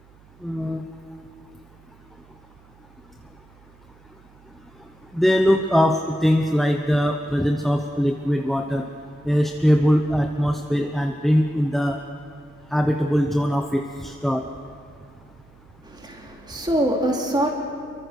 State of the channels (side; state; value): right; noise; hum, 27 dB below the sound